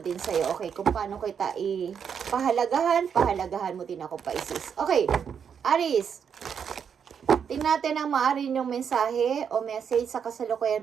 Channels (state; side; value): quieter; left; 7.3 dB